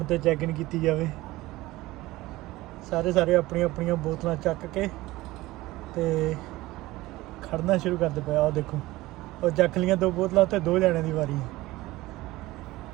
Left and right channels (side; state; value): left; quieter; 18.6 dB